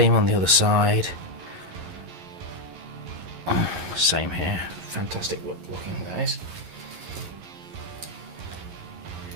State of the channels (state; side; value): late; left; 11 ms